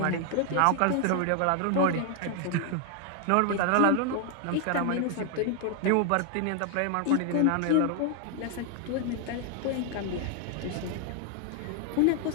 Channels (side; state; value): both; different; correlation 0.00